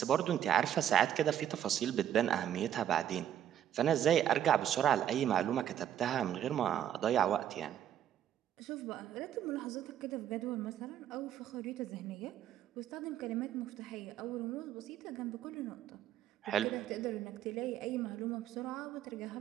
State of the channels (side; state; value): left; quieter; 10.5 dB